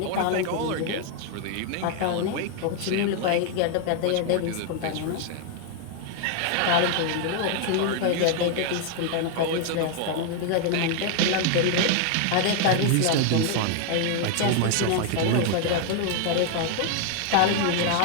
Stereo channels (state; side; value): different; both; correlation 0.00